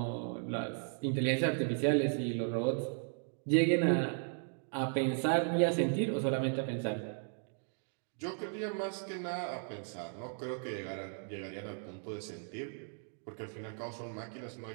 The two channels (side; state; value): left; silent; 54 dB below the other